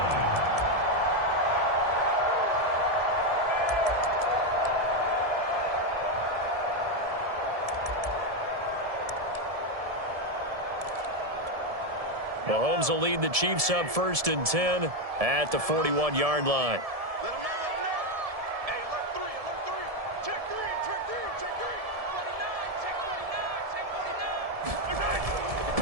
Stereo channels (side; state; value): left; late; 1.7 ms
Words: Mahomes will lead the Chiefs up 1st and 10 at the 41-yard line. Let them know. Hey, alert 3. Check 3. Check 49.